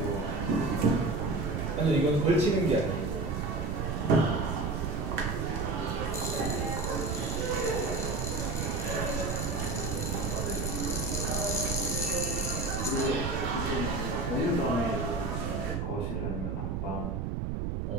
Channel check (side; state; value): right; noise; rumble, 1 dB below the sound